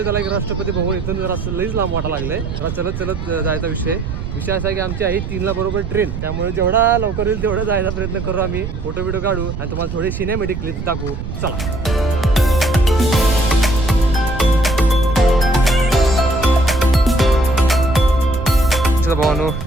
झाला की राष्ट्रपती भवन इथून जरा लईच लांब वाटा लागलंय, जरा चलत चलत जायचा विषय असा आहे की आमची आहे 3ला बरोबर ट्रेन, त्यामुळे जेवढा लवकर येईल तेवढा जायचा प्रयत्न करू आम्ही, फोटो व्हिडिओ काढू आणि तुम्हाला थोडी सिनेमॅटिक क्लिप्स दाखवू। चला भावानो,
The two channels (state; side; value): noise; right; rumble, 6 dB below the sound